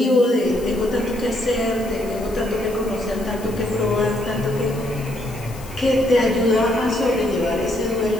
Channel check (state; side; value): noise; left; hiss, 19 dB below the sound